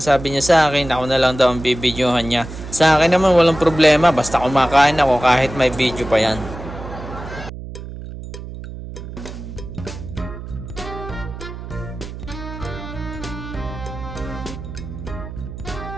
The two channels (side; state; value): right; noise; hum, 11 dB below the sound